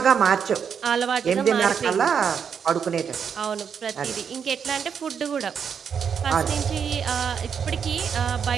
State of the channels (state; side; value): quieter; left; 7.1 dB